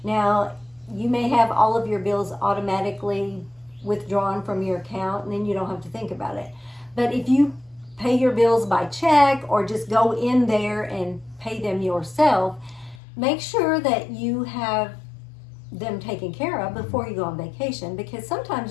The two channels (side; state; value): right; drops out; at 13.0 s